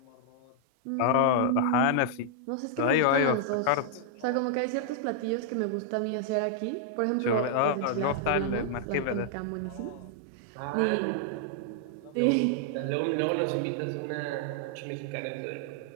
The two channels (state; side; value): different; both; correlation -0.01